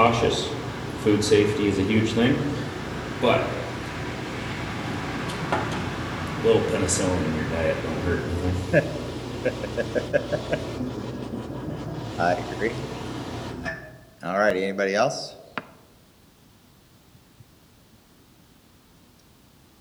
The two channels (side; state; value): both; identical; correlation 1.00